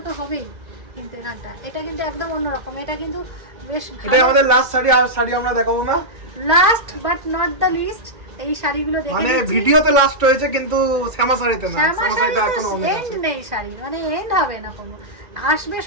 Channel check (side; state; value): left; late; 2.0 ms